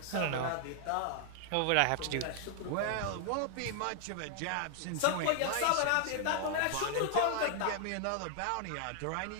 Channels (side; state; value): both; different; correlation 0.00